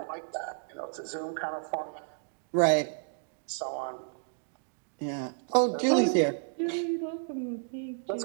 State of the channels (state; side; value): silent; left; digital silence